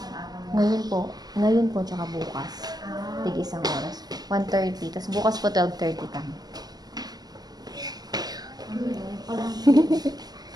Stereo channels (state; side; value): late; left; 0.19 ms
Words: araw mo? Ngayon po, tsaka bukas. Ah, Tig isang oras. 1:30. Tapos bukas po 12:30 kami. parang